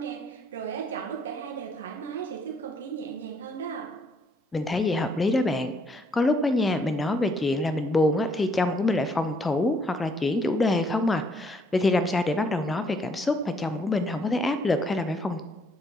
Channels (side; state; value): both; normal; correlation 0.68